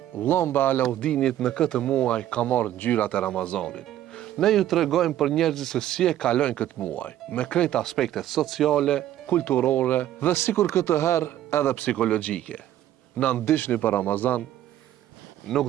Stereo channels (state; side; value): quieter; left; 12.4 dB